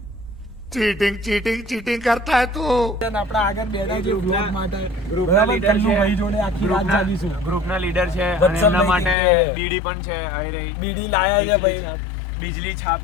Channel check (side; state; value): right; drops out; at 9.2 s